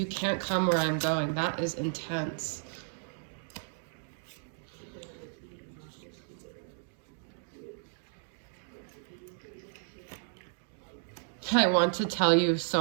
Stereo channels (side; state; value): left; silent; digital silence